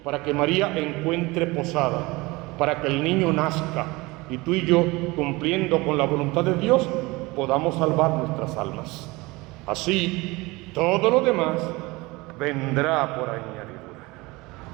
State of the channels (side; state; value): left; quieter; 22.8 dB